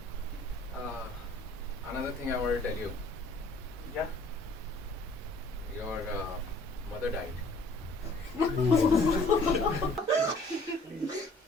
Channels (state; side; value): normal; both; correlation 0.56